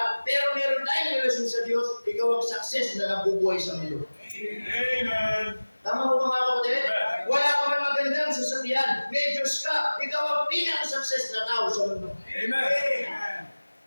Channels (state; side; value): inverted; both; correlation -1.00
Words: pero meron tayong relasyon sa Diyos, ikaw ang success na nabubuhay sa mundo. Amen. Tama po mga kapatid? Wala ka man magandang sasakyan, may Diyos ka, ikaw ang pinaka-success na tao sa mundo. Amen.